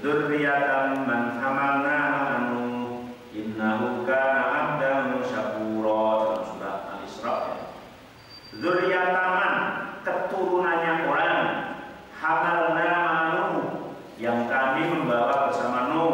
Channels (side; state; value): both; identical; correlation 1.00